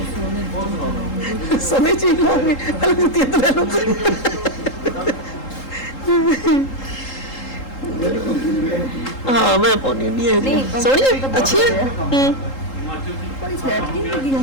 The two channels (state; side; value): late; right; 3.8 ms